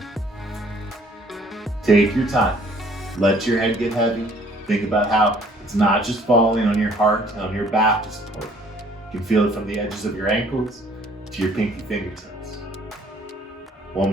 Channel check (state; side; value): normal; both; correlation 0.59